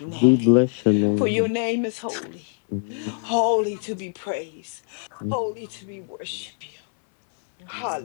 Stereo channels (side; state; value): right; silent; digital silence